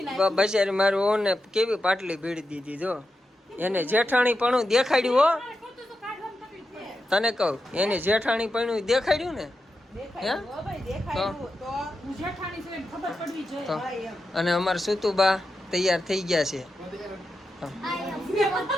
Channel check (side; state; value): both; normal; correlation 0.89